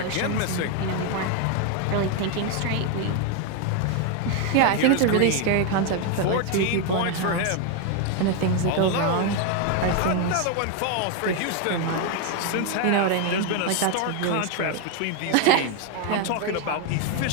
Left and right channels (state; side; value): different; both; correlation 0.01